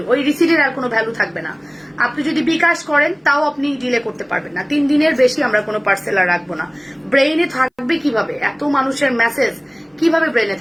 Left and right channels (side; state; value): both; identical; correlation 1.00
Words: ওই রিসিটের আর কোনো ভ্যালু থাকবে না। আপনি যদি বিকাশ করেন তাও আপনি ডিলে করতে পারবেন না। 3 দিনের বেশি আমরা কোনো পার্সেল আর রাখবো না। ব্রেইনে থাকবে কিভাবে এত মানুষের মেসেজ, কিভাবে ব্রেইনে